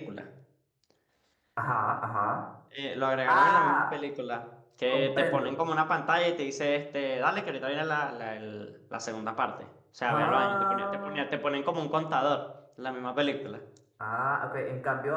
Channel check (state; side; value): identical; both; correlation 1.00